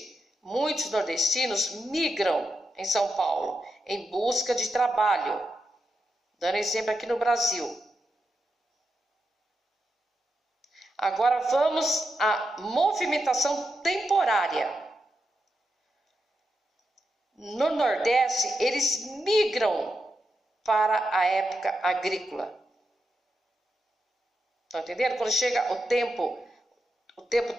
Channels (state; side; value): normal; both; correlation 0.86